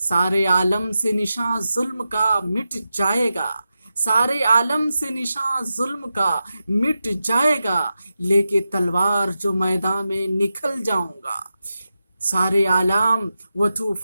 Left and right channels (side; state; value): both; inverted; correlation -0.91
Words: عالم سے نشاں ظلم کا مٹ جائے گا، سارے عالم سے نشاں ظلم کا مٹ جائے گا، لے کے تلوار جو میدان میں نکل جاؤں گا۔ سارے عالم و